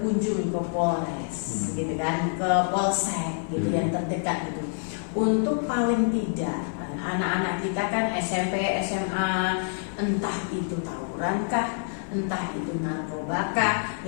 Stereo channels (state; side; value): silent; right; 56 dB below the other